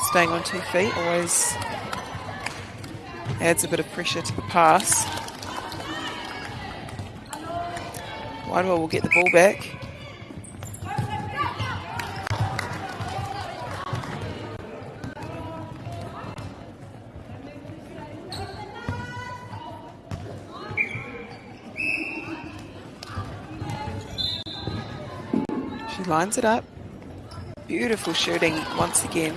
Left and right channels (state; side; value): identical; both; correlation 1.00